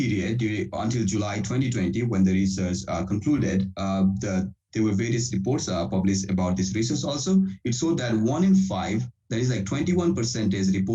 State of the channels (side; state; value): both; identical; correlation 1.00